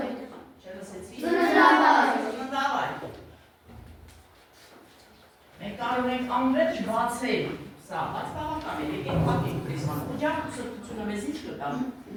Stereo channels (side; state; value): both; identical; correlation 1.00